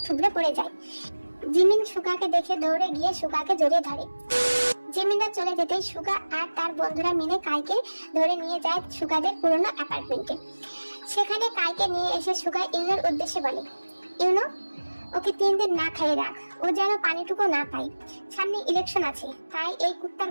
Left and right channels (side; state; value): both; inverted; correlation -1.00